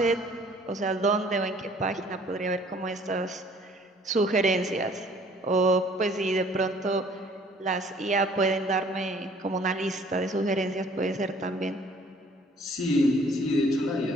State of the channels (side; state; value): both; normal; correlation 0.56